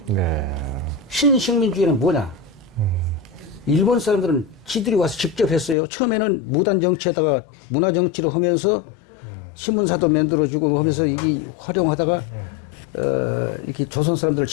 신식민주의는 뭐냐? 일본 사람들은 지들이 와서 직접 했어요. 처음에는 무단 정치에다가 문화 정치를 하면서 신문사도 만들어주고 하면서 이 활용하다가 이렇게 조선 사람들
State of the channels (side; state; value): right; drops out; at 5.8 s